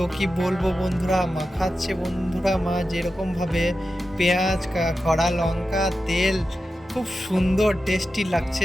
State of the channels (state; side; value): normal; both; correlation 0.92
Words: কি বলবো বন্ধুরা, মাখাচ্ছে বন্ধুরা মা যেরকমভাবে পেঁয়াজ খড়া লঙ্কা তেল, খুব সুন্দর টেস্টি